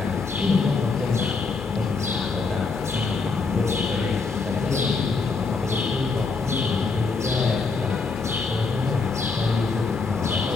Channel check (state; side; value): quieter; right; 4.4 dB